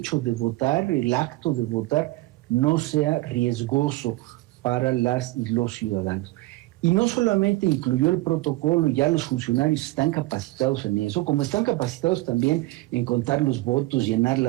de votar, el acto de votar, no sea riesgoso para las y los ciudadanos. Y no solamente incluyó el protocolo, y ya los funcionarios están capacitados en eso, como están capacitados también en contar los votos, llenar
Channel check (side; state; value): left; quieter; 19.3 dB